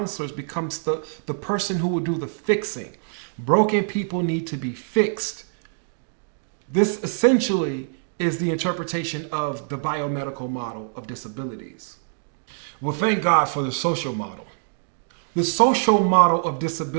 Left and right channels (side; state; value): left; silent; digital silence